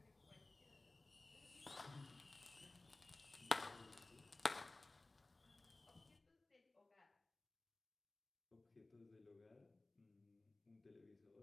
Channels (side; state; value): right; quieter; 3.0 dB